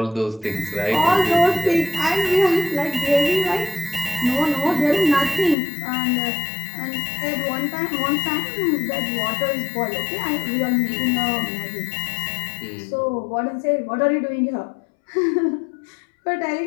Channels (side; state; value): right; drops out; at 5.6 s